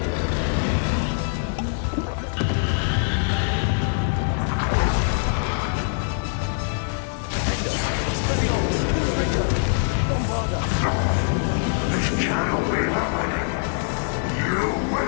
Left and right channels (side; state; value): right; silent; digital silence